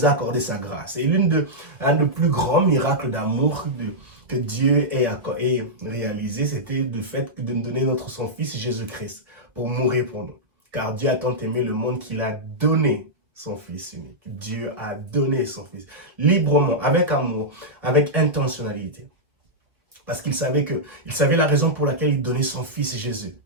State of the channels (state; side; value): late; left; 1.9 ms